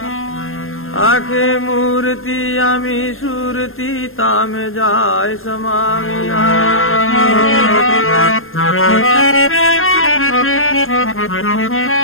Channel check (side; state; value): right; late; 0.60 ms